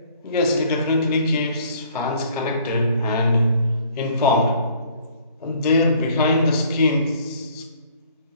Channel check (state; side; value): inverted; both; correlation -0.58